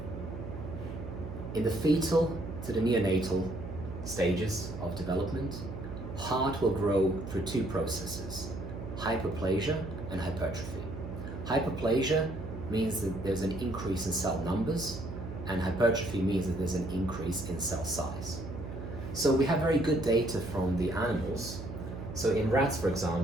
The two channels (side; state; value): right; noise; hum, 9 dB below the sound